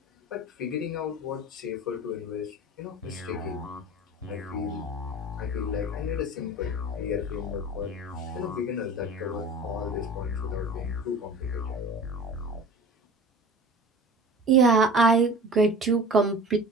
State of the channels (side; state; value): both; normal; correlation 0.38